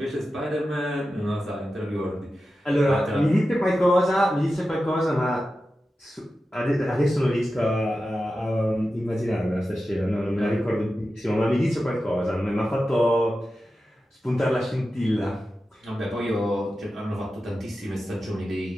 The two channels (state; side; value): normal; both; correlation 0.92